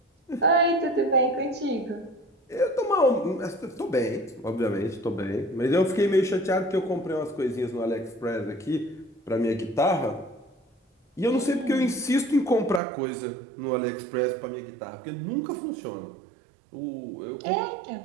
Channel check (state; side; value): drops out; left; at 12.8 s